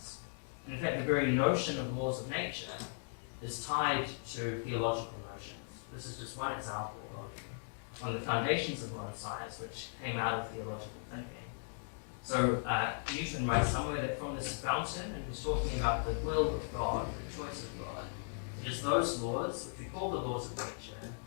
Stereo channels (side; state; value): right; silent; digital silence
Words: And in fact, the very notion of laws of nature is tied to theological notions. This is just one example of one of the foundations of modern science, which came out of theological thinking. So Newton writes somewhere that from this fountain, and he's talking about the will of God, the choice of God, it is those laws, which we call the laws of nature,